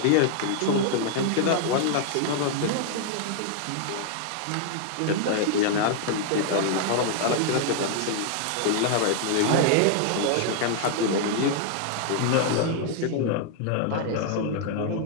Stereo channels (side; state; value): both; different; correlation 0.00